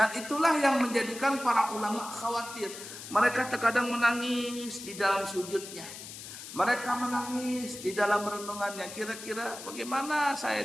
itulah yang menjadikan para ulama khawatir. Mereka terkadang menangis di dalam sujudnya, mereka menangis di dalam renungannya. Kira-kira bagaimana saya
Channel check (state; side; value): noise; left; hiss, 12 dB below the sound